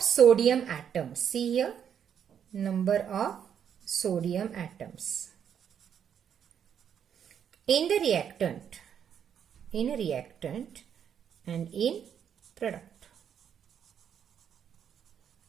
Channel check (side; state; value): left; quieter; 8.5 dB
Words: sodium atoms. See here, number of sodium atoms in the reactant, and in product.